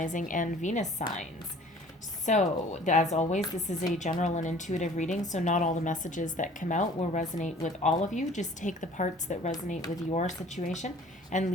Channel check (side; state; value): both; normal; correlation 0.50